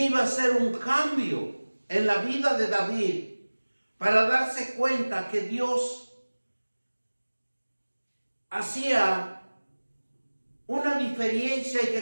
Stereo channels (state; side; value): inverted; both; correlation -1.00